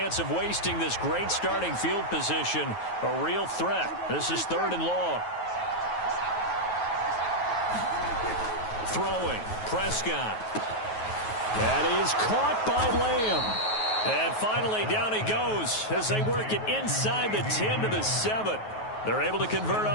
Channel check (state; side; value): late; right; 9.3 ms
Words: of wasting this great starting field position, a real threat. This is 3rd and long. Throwing, Prescott. That is caught by Lamb. And finally, down he goes as they work it inside the 10 to the 7. They're able to convert